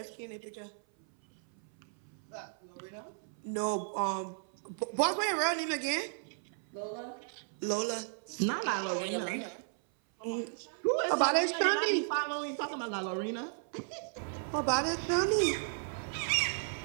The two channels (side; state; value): left; silent; 55 dB below the other